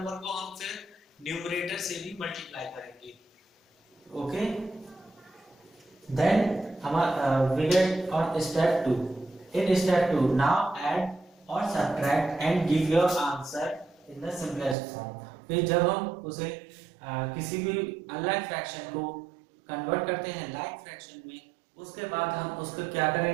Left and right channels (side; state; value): left; drops out; at 14.8 s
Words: को हम फिर न्यूमरेटर से भी मल्टीप्लाई करेंगे. ओके देन हमारा we get on step 2. In step 2 now add और subtract and give your answer in the simplest form. फिर जब हम उसे किसी भी अनलाइक फ्रैक्शन को कन्वर्ट करते हैं लाइक फ्रैक्शन में उसके बाद हम उसको क्या